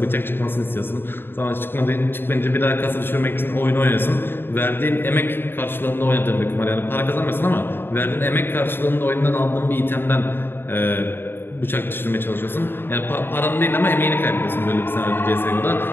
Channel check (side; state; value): right; late; 0.10 ms